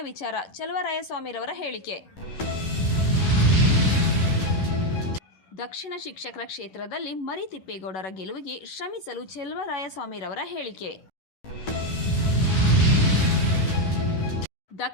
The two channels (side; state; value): right; late; 11 ms